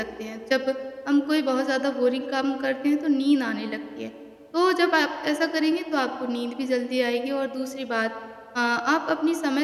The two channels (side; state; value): both; identical; correlation 1.00